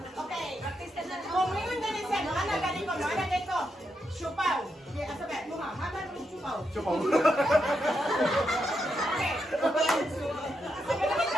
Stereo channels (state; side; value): normal; both; correlation 0.83